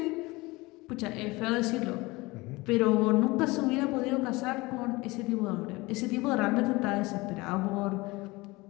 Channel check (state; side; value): quieter; right; 22.5 dB